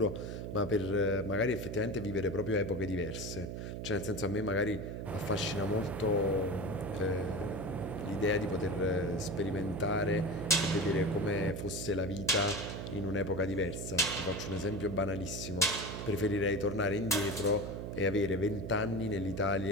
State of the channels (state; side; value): noise; right; hum, 6 dB below the sound